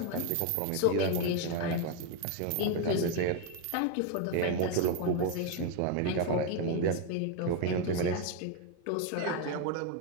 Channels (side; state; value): both; different; correlation 0.01